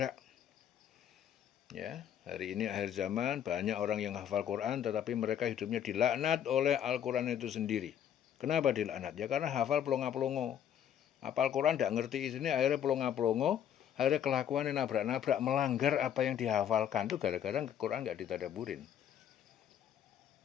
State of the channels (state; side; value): quieter; right; 9.6 dB